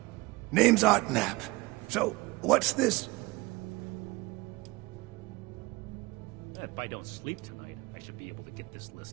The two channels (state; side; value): quieter; left; 22.5 dB